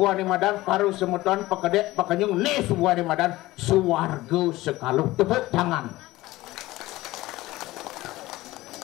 ane madan paru semeton pakedek pakanyung ni subo ane madan suwarga sekaluh. Tepuk tangan.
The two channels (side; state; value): right; quieter; 18.0 dB